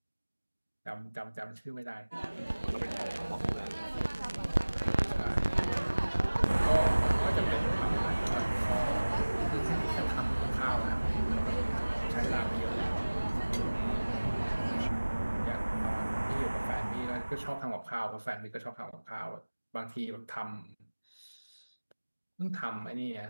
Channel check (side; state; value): both; inverted; correlation -1.00